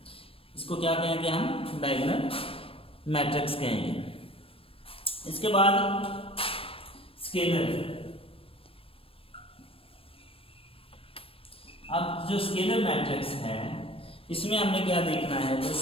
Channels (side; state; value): right; late; 0.27 ms